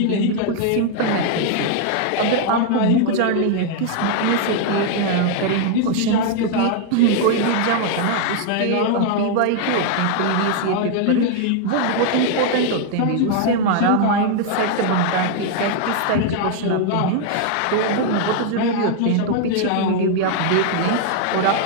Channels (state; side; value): different; both; correlation 0.00